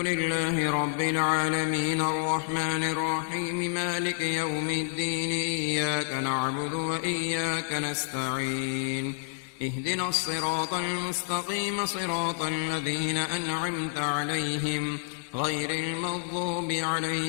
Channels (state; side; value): silent; right; digital silence